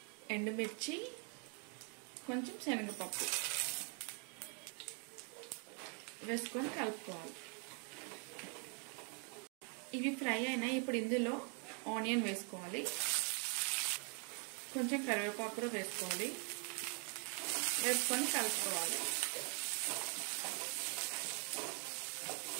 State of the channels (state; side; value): quieter; left; 37.4 dB